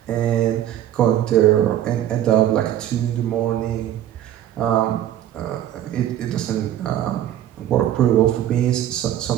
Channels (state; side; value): quieter; left; 11.7 dB